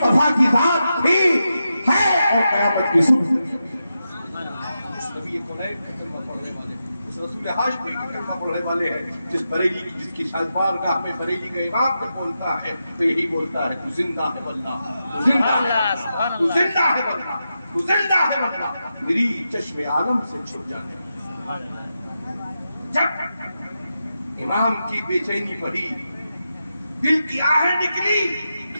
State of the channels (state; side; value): inverted; both; correlation -0.88